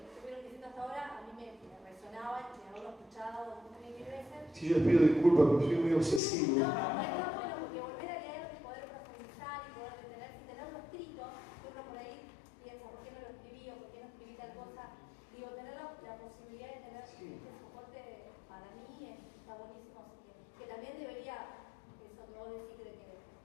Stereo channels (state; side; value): drops out; right; at 6.2 s